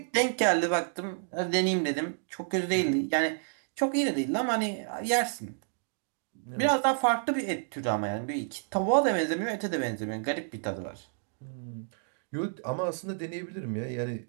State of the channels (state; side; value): silent; left; digital silence